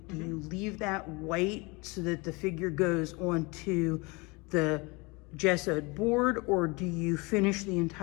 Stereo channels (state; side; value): quieter; right; 26.7 dB